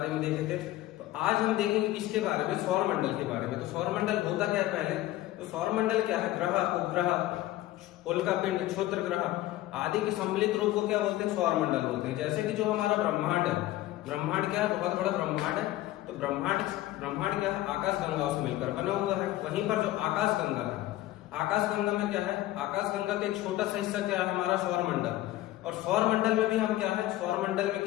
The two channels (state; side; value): quieter; right; 15.6 dB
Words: में देखे थे। तो आज हम देखेंगे किसके बारे में, सौर मंडल के बारे में। तो सौर मंडल होता क्या है पहले, तो सौर मंडल क्या है, ग्रह, उपग्रह, उल्कापिंड, क्षुद्र ग्रह आदि के सम्मिलित रूप को क्या बोलते हैं, सौर मंडल बोलते हैं। जैसे कि जो हमारा ब्रह्मांड है, ब्रह्मांड क्या है, बहुत बड़ा ब्रह्मांड है। तो ब्रह्मांड क्या है, आकाश गंगाओं से मिलकर बना हुआ है। वहीं पर जो आकाश गंगा है, आकाश गंगा में क्या है, आकाश गंगा का एक छोटा सा हिस्सा क्या है, हमारा सौर मंडल। और सौर मंडल में भी हम क्या है, सौर मंडल में